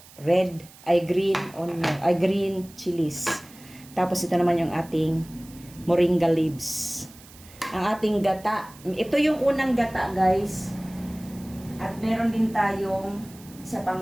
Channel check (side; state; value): right; noise; hiss, 22 dB below the sound